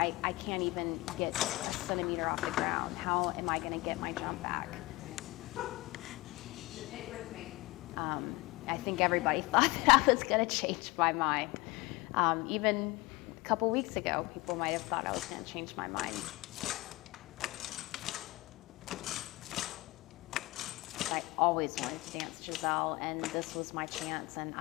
can't even get a centimeter off the ground. How am I going to get my jump back? I think everybody thought that I was going to change my mind. Even a couple weeks ago, people might have thought I was going to change my mind. I always wanted to dance Giselle, and this was my chance, and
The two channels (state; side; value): quieter; right; 21.7 dB